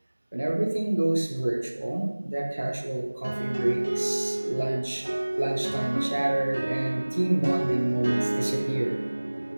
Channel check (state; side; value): inverted; both; correlation -1.00